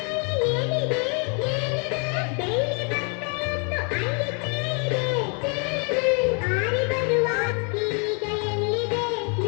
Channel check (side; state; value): right; quieter; 36.9 dB